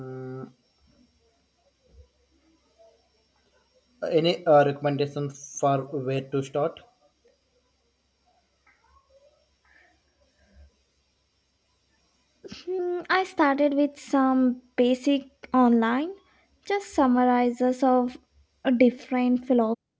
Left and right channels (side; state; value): both; identical; correlation 1.00